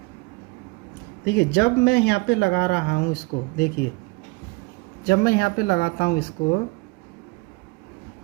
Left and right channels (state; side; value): quieter; left; 26.7 dB